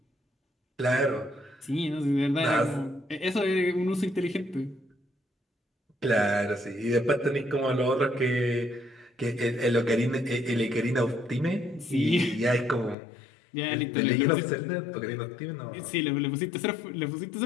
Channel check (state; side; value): drops out; right; at 13.0 s